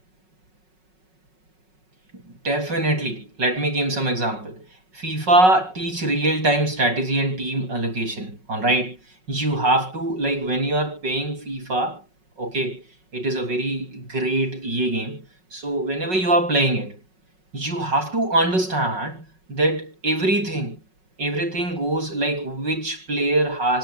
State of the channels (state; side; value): late; left; 5.4 ms